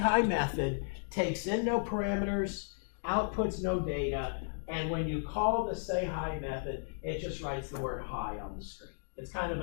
method takes in no parameters, outputs no data, and when you call the say hi method, it just writes the word hi on the screen. It's kind of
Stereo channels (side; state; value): right; silent; digital silence